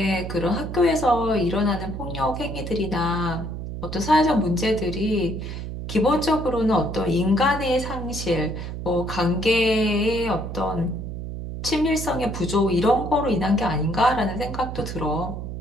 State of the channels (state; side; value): noise; right; hum, 7 dB below the sound